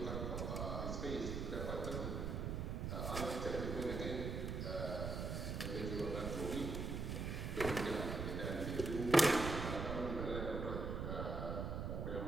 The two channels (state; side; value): noise; right; rumble, 2 dB below the sound